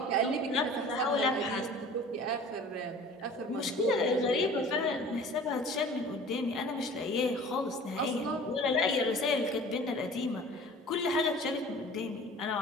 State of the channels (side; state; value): both; normal; correlation 0.44